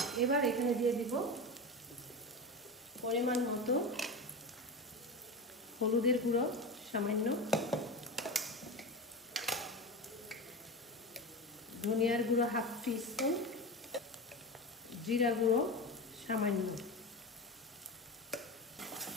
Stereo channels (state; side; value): normal; both; correlation 0.23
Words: এবার এখানে দিয়ে দিব পরিমাণ মতো হলুদের গুঁড়ো সামান্য, ধনিয়ার গুঁড়ো 1/2 টিস্পুন, জিরা গুঁড়ো সামান্য,